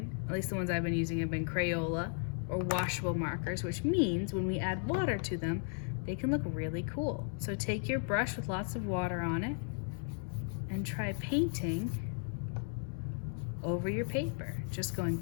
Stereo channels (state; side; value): silent; right; 54 dB below the other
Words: at least the ones I've been using, have been Crayola or washable markers, which means when we add water to them, they can look really cool. So take your brush with lots of water on it and try painting over your paper. Just going